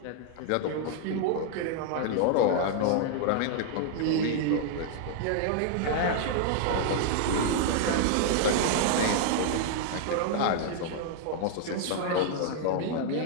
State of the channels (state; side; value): different; both; correlation -0.01